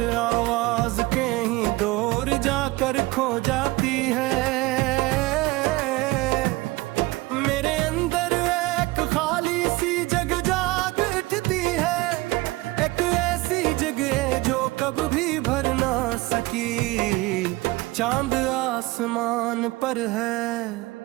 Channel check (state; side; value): quieter; left; 20.9 dB